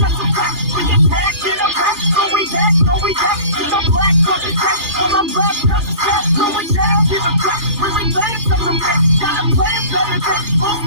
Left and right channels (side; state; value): left; late; 3.3 ms